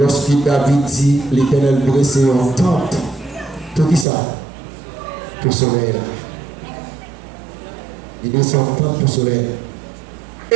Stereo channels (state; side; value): drops out; left; at 4.0 s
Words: David dit, l'Éternel dressé en tente, tout qui ça? Pour le soleil. Il descend en tente pour le soleil.